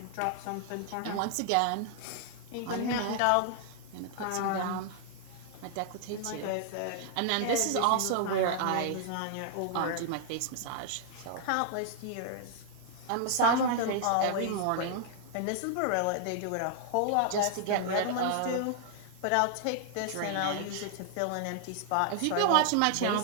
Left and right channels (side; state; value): both; different; correlation 0.00